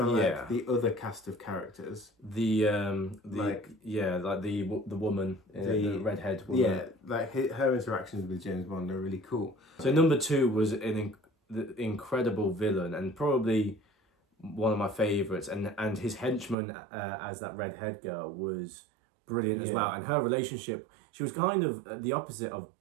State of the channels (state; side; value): drops out; left; at 16.6 s